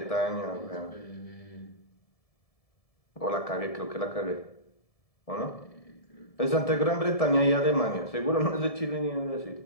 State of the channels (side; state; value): right; late; 1.7 ms